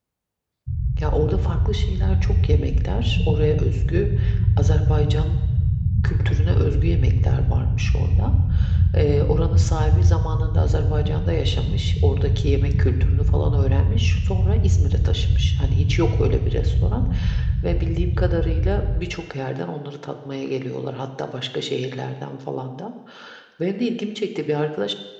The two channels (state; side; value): identical; both; correlation 1.00